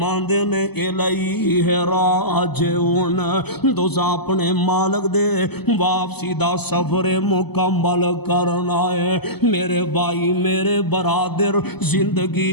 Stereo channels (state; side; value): late; right; 0.98 ms